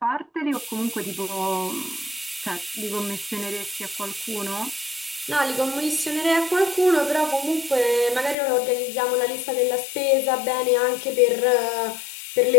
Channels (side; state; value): right; drops out; at 8.3 s